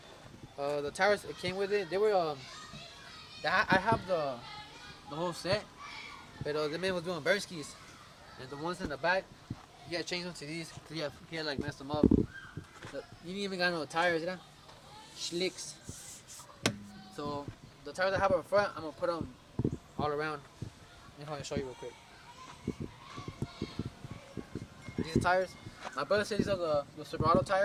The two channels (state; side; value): identical; both; correlation 1.00